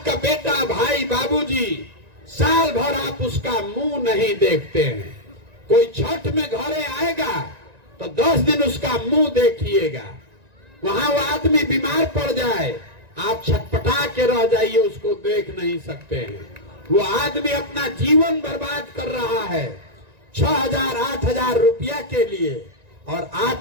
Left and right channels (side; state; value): left; late; 1.9 ms